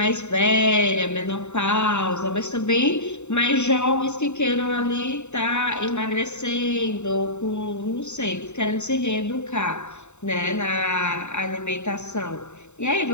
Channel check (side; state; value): right; late; 0.83 ms